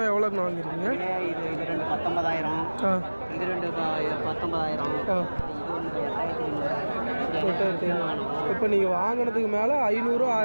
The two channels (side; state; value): both; inverted; correlation -1.00